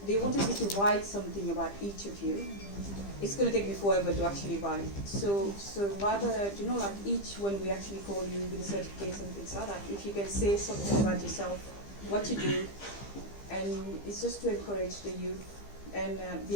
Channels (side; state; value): right; late; 15 ms